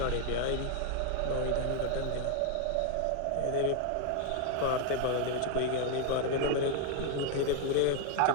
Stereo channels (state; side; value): different; both; correlation 0.01